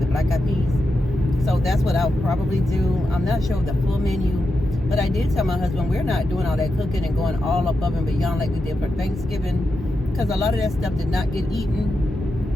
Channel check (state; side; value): normal; both; correlation 0.88